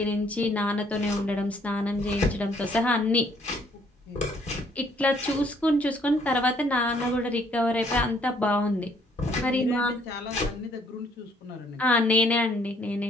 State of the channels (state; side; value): normal; both; correlation 0.64